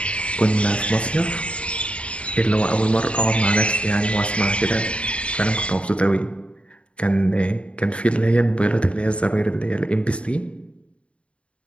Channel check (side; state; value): right; late; 0.060 ms